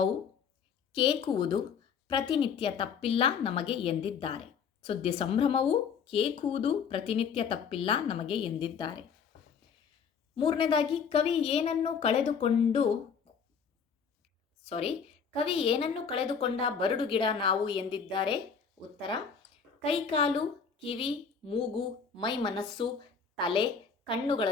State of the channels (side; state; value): right; quieter; 6.5 dB